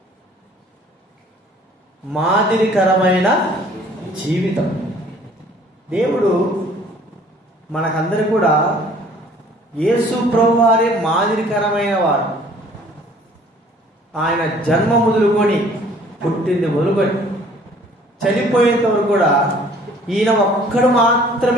మాదిరికరమైన జీవితం. దేవుడు మనకందరూ కూడా యేసు ప్రభువు వారే మాదిరికరమైన వాడు. ఆయన జన్మ మొదలుకొని, పుట్టింది మొదలుకొని, చనిపోయేంత వరకు కూడా ఈయన ఒక్కడు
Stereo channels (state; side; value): normal; both; correlation 0.55